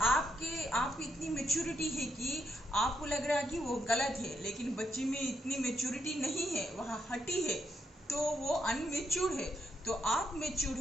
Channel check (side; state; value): both; normal; correlation 0.79